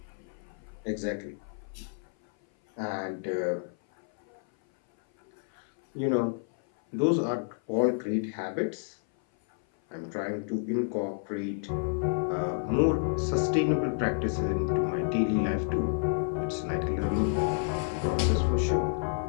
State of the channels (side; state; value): right; silent; 56 dB below the other